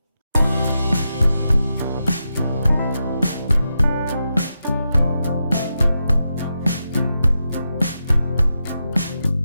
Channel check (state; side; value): inverted; both; correlation -0.88